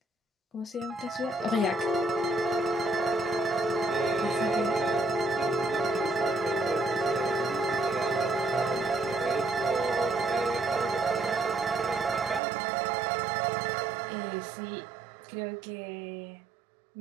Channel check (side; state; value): left; drops out; at 12.4 s